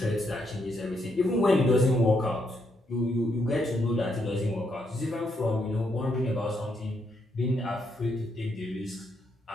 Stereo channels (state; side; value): normal; both; correlation 0.77